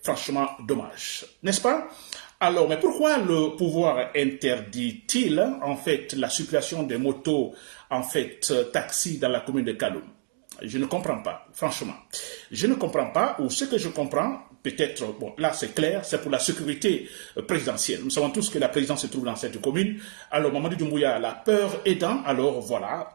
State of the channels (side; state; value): left; silent; digital silence